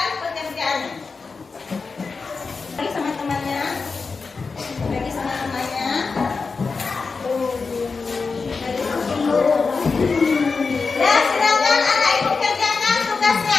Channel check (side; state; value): right; quieter; 4.6 dB